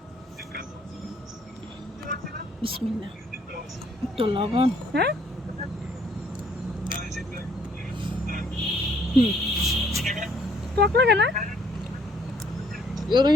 বিসমিল্লাহ। একটু লবণ। হ্যাঁ, টক লাগে না? এগুলো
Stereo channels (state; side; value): normal; both; correlation 0.64